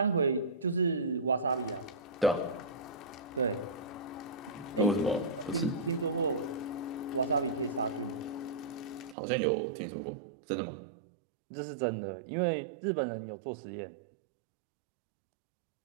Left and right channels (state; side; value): drops out; left; at 9.2 s